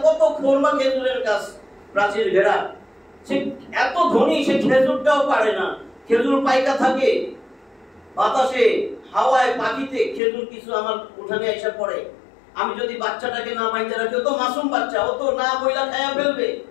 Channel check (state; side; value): drops out; right; at 10.2 s